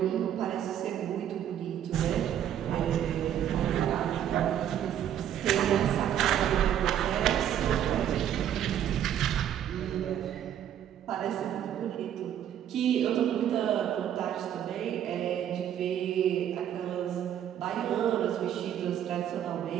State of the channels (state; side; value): quieter; left; 10.3 dB